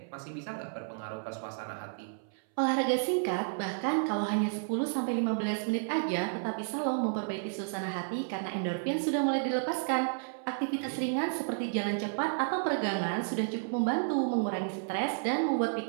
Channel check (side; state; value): left; silent; 57 dB below the other